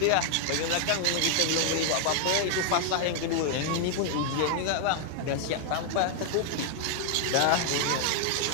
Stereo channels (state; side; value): different; both; correlation 0.00